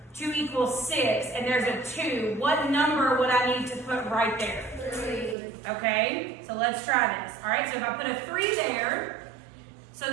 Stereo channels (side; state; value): left; drops out; at 5.4 s